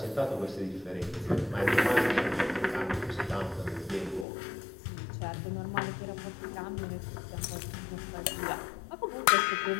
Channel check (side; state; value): right; drops out; at 4.2 s